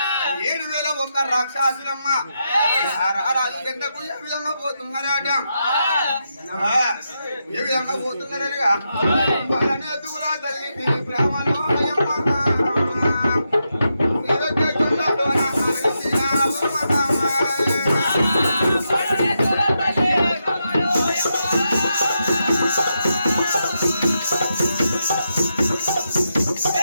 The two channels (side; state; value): both; inverted; correlation -0.85